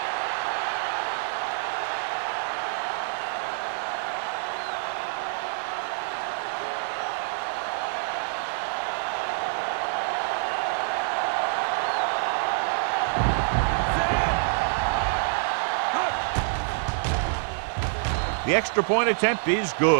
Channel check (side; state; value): left; silent; 57 dB below the other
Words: The extra point attempt is